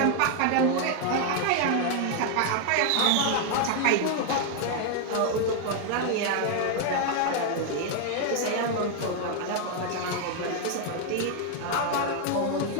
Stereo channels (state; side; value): different; both; correlation 0.00